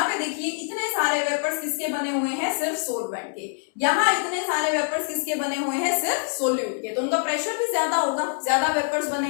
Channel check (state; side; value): silent; right; 60 dB below the other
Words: पे देखिए इतने सारे वेपर्स किसके बने हुए हैं, सिर्फ सोलवेंट के, यहाँ इतने सारे वेपर्स किसके बने हुए हैं, सिर्फ सोल्यूट के, तो उनका प्रेशर भी ज्यादा होगा, ज्यादा वेपर्स बने